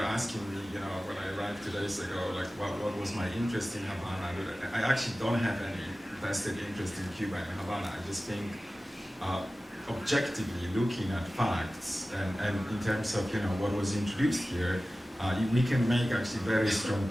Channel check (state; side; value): normal; both; correlation 0.96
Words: asking me, you know, when I arrived 2 days ago, like what was my interest in Havana. I actually don't have any vested interest in Cuba and Havana. I just think objectively looking at facts and in terms of, you know, what was introduced here, we can make actually very strong